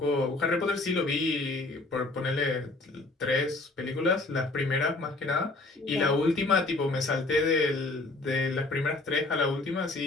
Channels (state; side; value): quieter; right; 3.1 dB